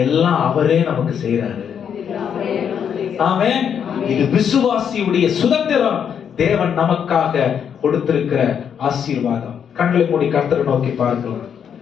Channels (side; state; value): right; quieter; 8.0 dB